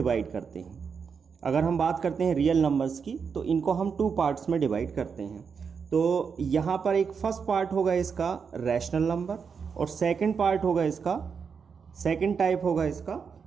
करते हैं। अगर हम बात करते हैं रियल नंबर्स की, तो इनको हम 2 पार्ट्स में डिवाइड करते हैं। तो यहाँ पर एक फर्स्ट पार्ट होगा इसका रैशनल नंबर, और सेकंड पार्ट होगा इसका, सेकंड टाइप होगा इसका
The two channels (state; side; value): quieter; left; 6.1 dB